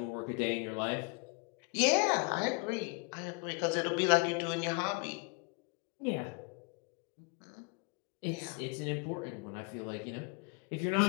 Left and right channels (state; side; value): quieter; right; 31.0 dB